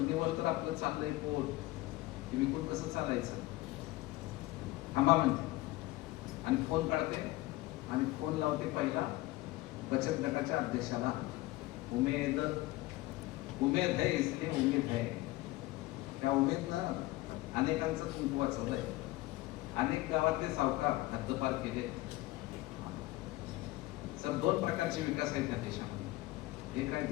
तर आपलं चाललंय पोट, ते विकून कसं चालायचं. थांबा म्हणते आणि फोन काढते आणि फोन लावते पहिला बचत गटाच्या अध्यक्षाला. उमेद है, इसलिए उमेद है. त्या उमेदनं अनेकांचं कुंकू वाचवलंय, अनेक गावातले सावकार हद्दपार केले. सर दोन प्रकारचे विकास आहेत या देशामध्ये, एक आहे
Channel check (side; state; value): right; quieter; 18.8 dB